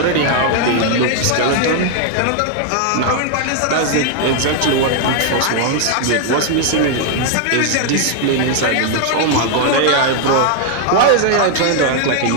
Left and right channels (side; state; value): both; different; correlation 0.00